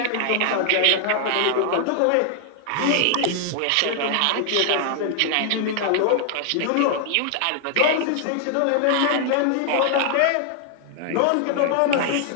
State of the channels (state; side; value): different; both; correlation 0.00